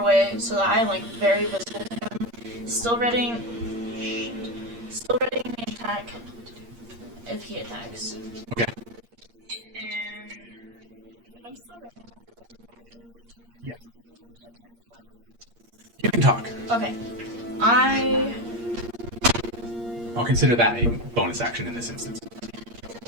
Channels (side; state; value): left; late; 8.6 ms